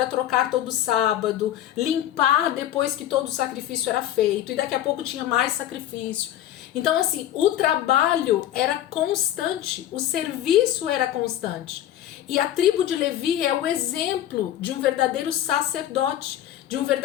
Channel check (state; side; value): quieter; right; 12.1 dB